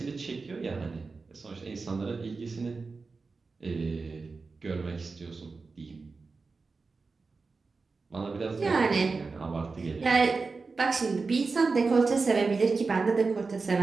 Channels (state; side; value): quieter; left; 4.2 dB